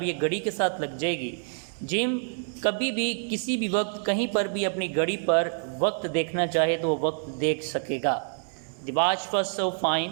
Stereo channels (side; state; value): left; silent; 60 dB below the other